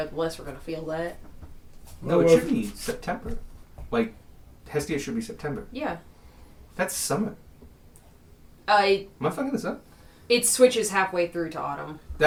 the less we're going to feel that. No, it should be September. Like, Hestia should be September. Yeah. That's summer. It Am I fucking this up? switches halfway through to autumn.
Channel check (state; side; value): identical; both; correlation 1.00